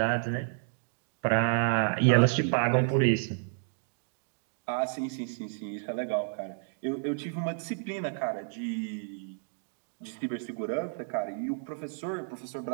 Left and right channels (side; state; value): left; silent; digital silence